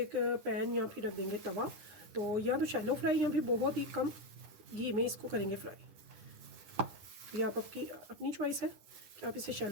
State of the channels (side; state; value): left; late; 10 ms